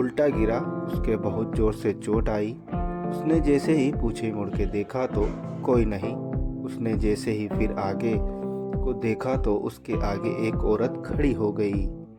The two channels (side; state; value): both; identical; correlation 1.00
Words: गिरा। उसके बहुत जोर से चोट आई। उसने जैसे ही पीछे मुड़ के देखा तो कोई नहीं। उसने जैसे ही फिर आगे को देखा तो उसके आगे एक औरत खड़ी हो गई।